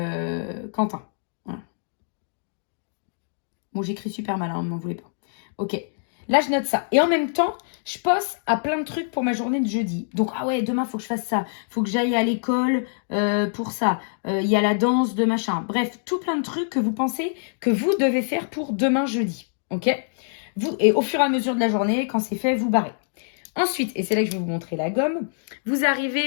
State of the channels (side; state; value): right; silent; digital silence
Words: Quentin. Voilà. Bon, j'écris super mal, hein, ne m'en voulez pas. Ok. Là, je note ça. Et en même temps, je pense à plein de trucs pour ma journée de jeudi. Donc, ah ouais, demain, il faut que je fasse ça. Il faut que j'aille à l'école pour ça. Il y a la danse de machin. Bref, tout plein de trucs que vous pensez que vous devez faire pour demain jeudi. Ok? Et au fur et à mesure de la journée, quand c'est fait, vous barrez. Ensuite, et c'est là que je vais vous montrer la gomme, vous